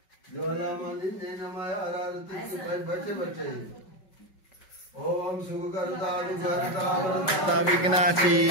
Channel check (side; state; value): right; late; 5.3 ms